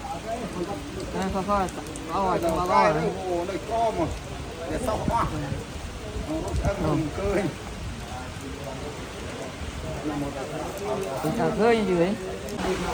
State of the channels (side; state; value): both; identical; correlation 1.00